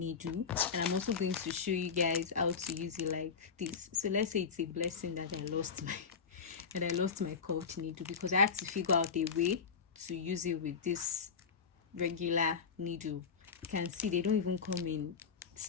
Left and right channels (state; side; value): quieter; right; 5.8 dB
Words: and I'm also going to show you guys how to use it like this. So let's say it's a blessing that I lost my curved needle, because I had to figure out a way to use it with this regular needle. You can see they don't even come in